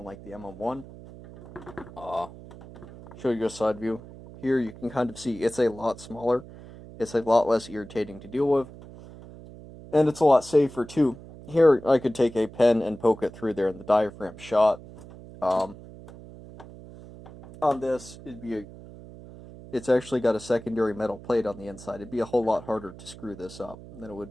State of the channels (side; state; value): right; noise; hum, 17 dB below the sound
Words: the MM1. Show you a side view. Here you can kind of see it's a lot smaller. It's a lot less irritating to deal with. And it's a lot safer, too. Here, I could take a pen and poke it through there and the diaphragm shot. On this, it's actually got a secondary metal plate on the inside. It'd be a whole lot harder to screw this up than it would